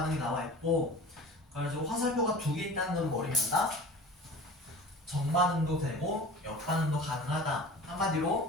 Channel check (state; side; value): normal; both; correlation 0.39